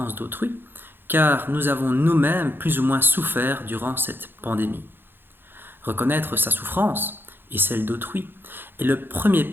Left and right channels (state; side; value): late; left; 0.10 ms